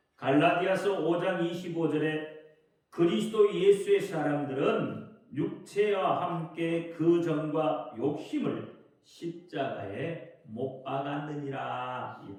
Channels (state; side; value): identical; both; correlation 1.00